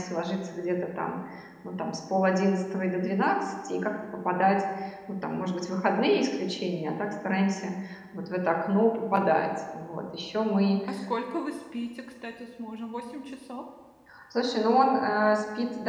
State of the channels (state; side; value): identical; both; correlation 1.00